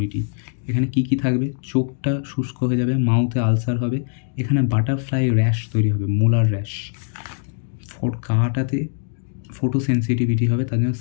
এখানে কী কী থাকবে, চোখটা শুষ্ক হয়ে যাবে, মাউথে আলসার হবে, এখানে বাটারফ্লাই র্যাশ তৈরি হবে, মোলার র্যাশ, গাটাতে ফটো সেন্সিটিভিটি হবে, তার জন্য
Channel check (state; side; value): silent; right; 64 dB below the other